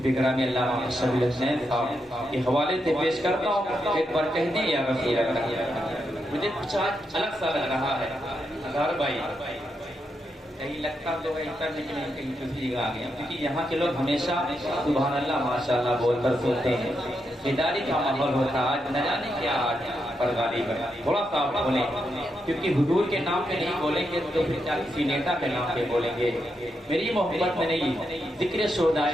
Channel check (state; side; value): normal; both; correlation 0.83